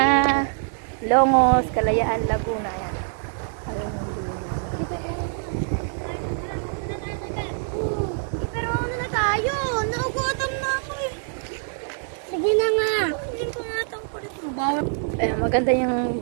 Longos, Kalayaan, Laguna. Ayan. Pero ano na tayo? Naugutom na ako eh. Sige na nga. Hindi ko nga itong kulit mo. Ayan, maganda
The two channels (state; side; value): silent; left; digital silence